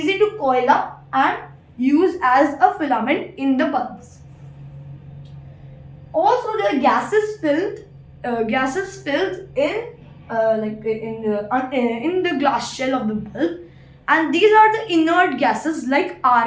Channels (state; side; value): identical; both; correlation 1.00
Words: to coil up and use as a filament in the bulbs. Also, there are gases filled in the glass shell of the bulb, and these are the inert gases like